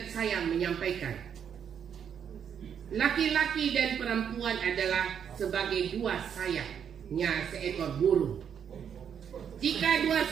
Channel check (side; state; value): left; quieter; 8.1 dB